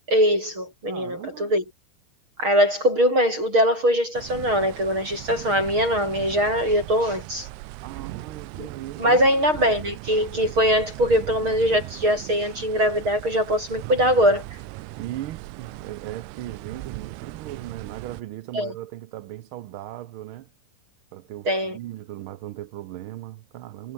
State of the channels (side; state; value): left; late; 6.4 ms